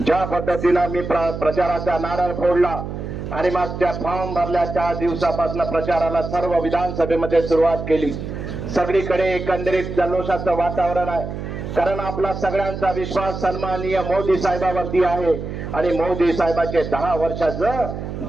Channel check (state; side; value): noise; right; hum, 7 dB below the sound